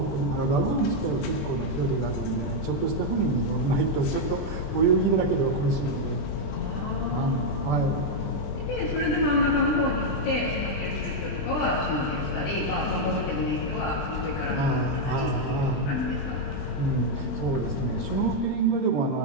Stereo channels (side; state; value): right; late; 20 ms